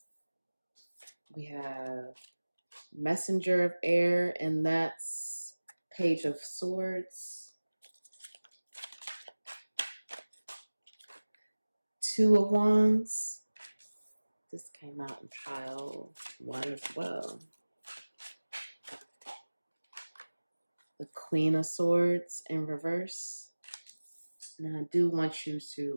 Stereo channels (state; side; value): inverted; both; correlation -1.00